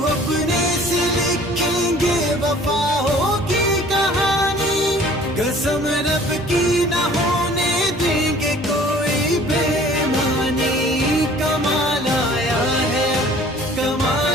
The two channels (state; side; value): normal; both; correlation 0.51